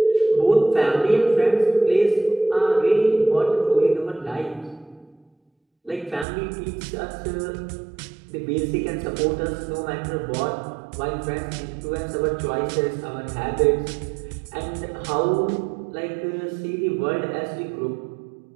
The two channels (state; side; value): drops out; left; at 6.2 s